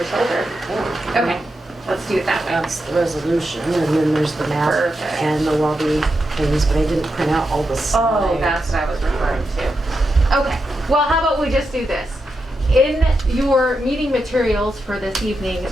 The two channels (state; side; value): normal; both; correlation 0.87